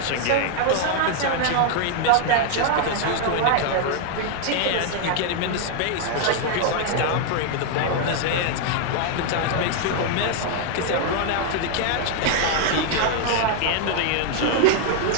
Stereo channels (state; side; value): different; both; correlation 0.00